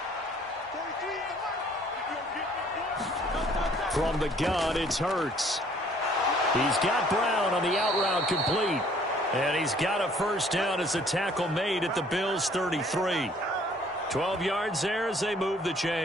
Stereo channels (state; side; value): normal; both; correlation 0.58